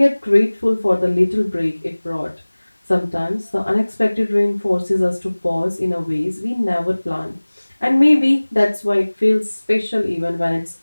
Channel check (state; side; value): inverted; both; correlation -1.00